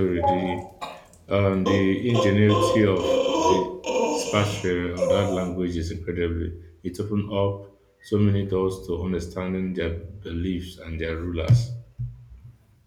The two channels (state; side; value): identical; both; correlation 1.00